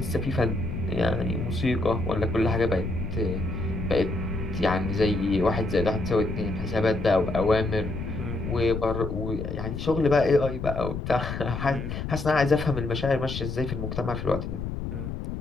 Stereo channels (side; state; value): left; noise; rumble, 5 dB below the sound